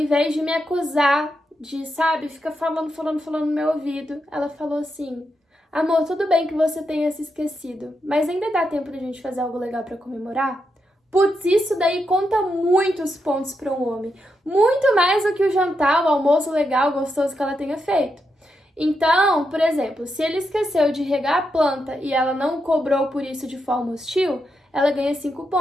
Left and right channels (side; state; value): both; normal; correlation 0.84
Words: de me acusar de, sabe, fica falando no meu ouvido, ela falou assim: amor, tudo bem que você tenha se esquecido, mas ainda dá tempo de a gente fazer algo legal pra comemorar? Putz, isso daí conta muitos pontos para um homem. Muito mais do que o jantar, o almoço legal, gostoso que ela tenha feito. Então, por exemplo, se ele esqueceu de regar a planta e ela não cobrou por isso de forma hostil, ela ganha 5